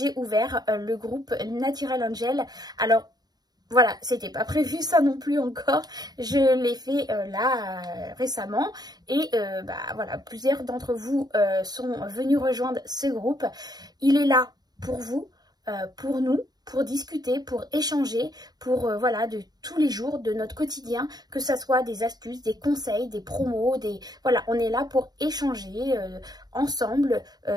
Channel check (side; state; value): left; late; 0.19 ms